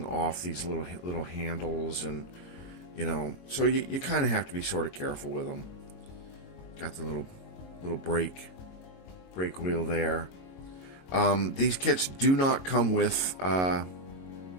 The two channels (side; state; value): right; late; 22 ms